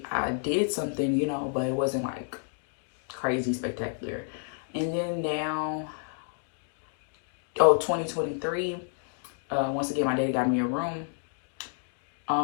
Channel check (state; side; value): silent; right; 58 dB below the other